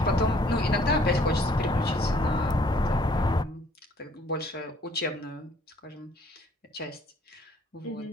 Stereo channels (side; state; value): both; normal; correlation 0.60